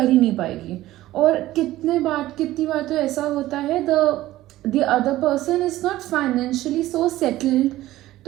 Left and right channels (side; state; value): left; quieter; 15.7 dB